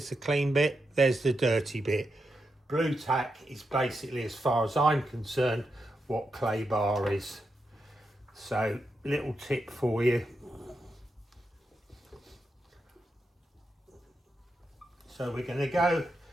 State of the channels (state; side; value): normal; both; correlation 0.86